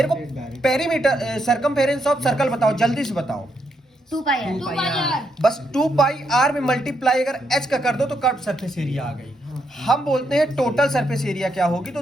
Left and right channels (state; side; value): normal; both; correlation 0.78